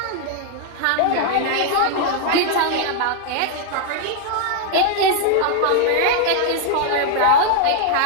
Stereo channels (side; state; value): both; different; correlation 0.00